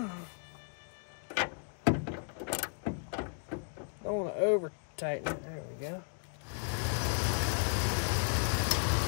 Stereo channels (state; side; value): silent; right; 55 dB below the other